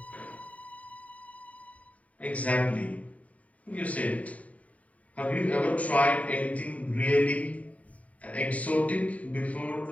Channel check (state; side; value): late; right; 0.069 ms